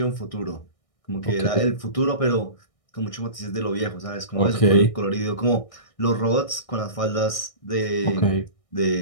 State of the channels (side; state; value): right; late; 1.6 ms